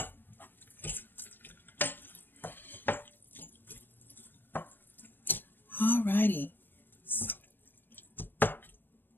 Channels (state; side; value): late; right; 0.095 ms